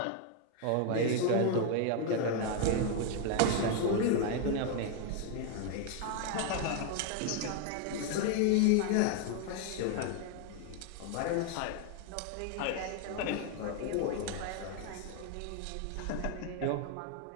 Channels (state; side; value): different; both; correlation 0.01